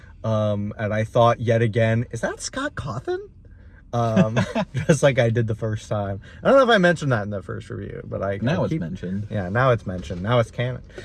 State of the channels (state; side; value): identical; both; correlation 1.00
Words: And I thought yet again, is that Scott Cawthon? Just like I did the first time. I don't know if I mentioned that in the first review, but it's mentioned. Yeah, now it's mentioned. Now it's canon.